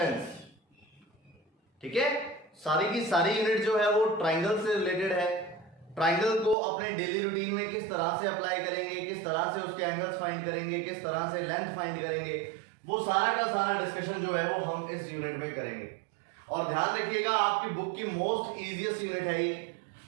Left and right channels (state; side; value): drops out; left; at 6.6 s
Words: ठीक है, सारी की सारी यूनिट जो है वो ट्राइंगल से रिलेटेड है। ट्राइंगल को अपने डेली रूटीन में किस तरह से अप्लाई करेंगे, किस तरह से उसके एंगल्स फाइंड करेंगे, किस तरह से लेंथ फाइंड करेंगे, वो सारा का सारा डिस्कशन जो है वो हम इस यूनिट में करेंगे। और ध्यान रखिएगा, आपकी बुक की मोस्ट इजीएस्ट यूनिट है ये।